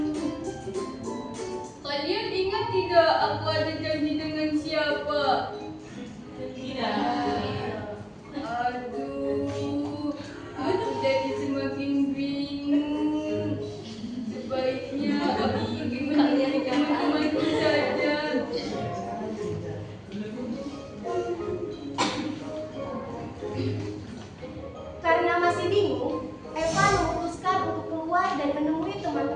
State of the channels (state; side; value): identical; both; correlation 1.00